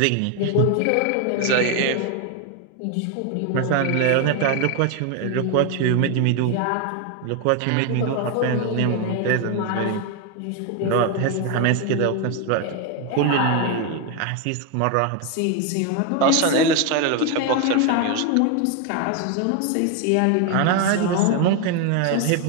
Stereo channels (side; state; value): both; different; correlation 0.01